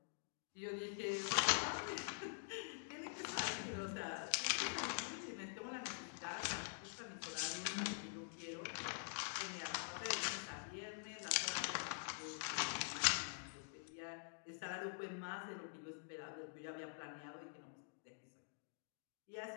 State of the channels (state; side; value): silent; right; digital silence